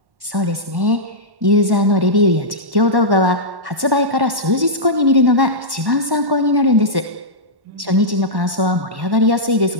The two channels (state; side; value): late; left; 1.1 ms